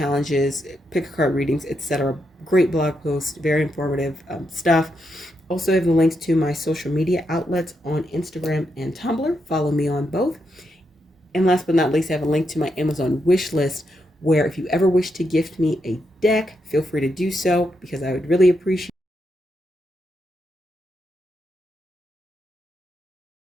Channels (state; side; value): normal; both; correlation 0.82